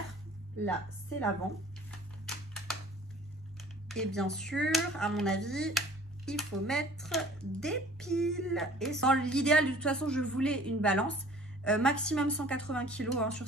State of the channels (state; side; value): normal; both; correlation 0.49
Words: Là, c'est l'avant. Et bien sûr, à mon avis, il faut mettre des piles. Et dans l'idéal, de toute façon, je voulais une balance. Maximum 180 kg hein, sur